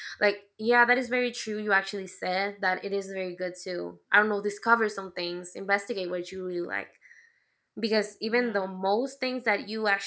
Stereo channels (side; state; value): both; identical; correlation 1.00